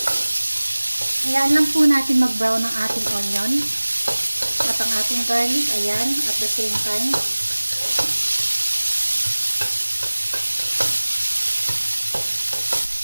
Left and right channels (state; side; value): inverted; both; correlation -1.00